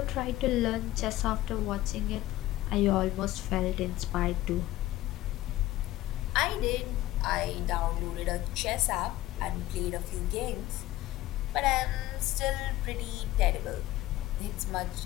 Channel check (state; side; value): quieter; right; 15.8 dB